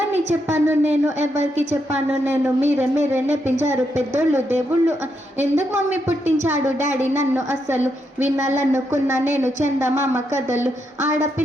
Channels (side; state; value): both; normal; correlation 0.80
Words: చెప్పాను నేను, ఎవరికి చెప్పాను నేను, మీరే మీరే నేర్పించారు పెద్దోళ్ళు దేవుళ్ళు, ఎందుకు మమ్మీ పుట్టించాడు డాడీ నన్ను, అస్సలు వినాలనుకున్నా నేను చందమామ కథలు,